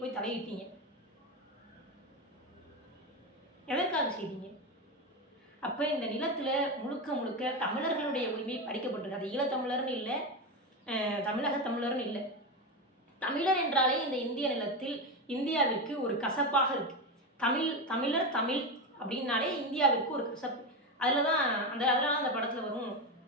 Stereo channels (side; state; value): both; normal; correlation 0.15